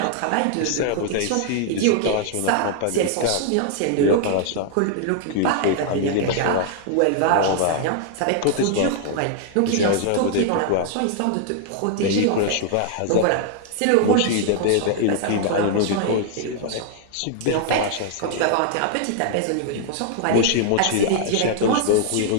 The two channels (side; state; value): both; different; correlation 0.00